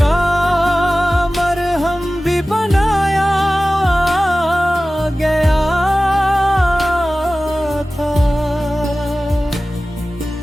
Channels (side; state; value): both; normal; correlation 0.97